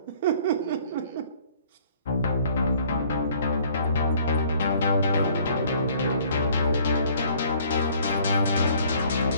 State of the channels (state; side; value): inverted; both; correlation -0.57